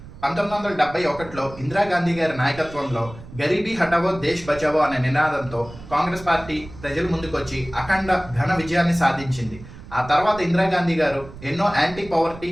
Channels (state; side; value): noise; right; rumble, 16 dB below the sound